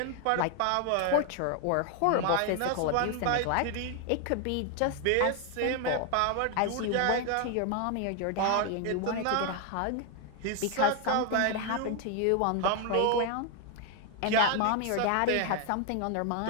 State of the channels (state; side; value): different; both; correlation 0.01